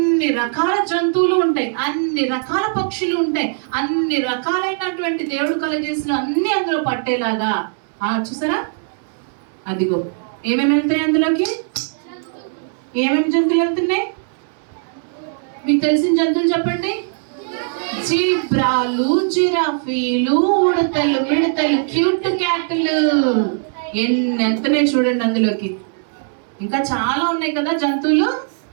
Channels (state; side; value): silent; left; digital silence